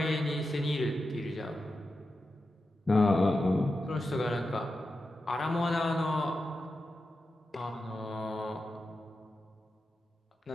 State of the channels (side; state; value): both; normal; correlation 0.90